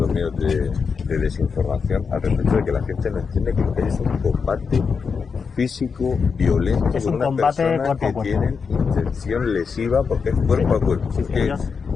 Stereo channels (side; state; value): right; quieter; 5.6 dB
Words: medios de desinformación al respecto de que la gente no entiende que lo que es un combate físico, violento, es con un unas combate personas cuerpo a que cuerpo. tienen intención lesiva porque es cuerpo a cuerpo. Sí, Porque ellos...